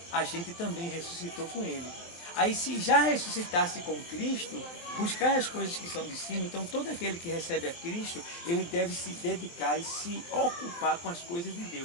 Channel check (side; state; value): right; late; 23 ms